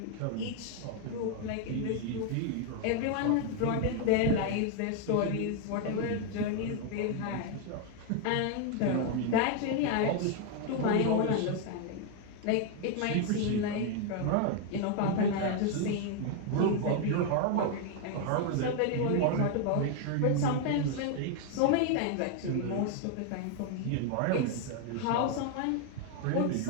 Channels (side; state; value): both; different; correlation 0.01